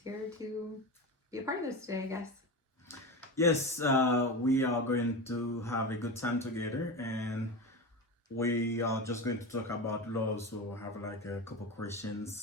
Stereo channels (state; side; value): normal; both; correlation 0.23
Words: to be a part of this today, I guess. Yes, we are going to have a good time together, and we are just going to talk about love. So I have like a couple